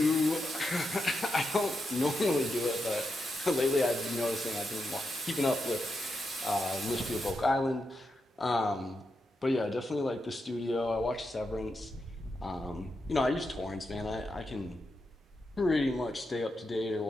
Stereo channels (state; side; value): normal; both; correlation 0.85